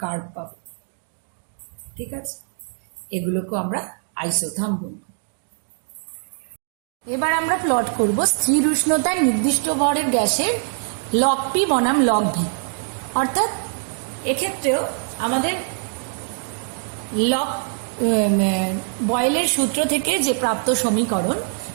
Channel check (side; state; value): left; silent; 59 dB below the other